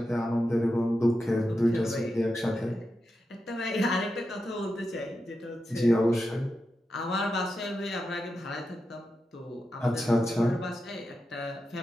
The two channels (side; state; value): both; normal; correlation 0.89